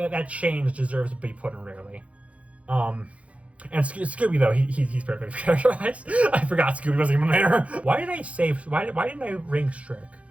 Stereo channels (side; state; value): left; late; 0.064 ms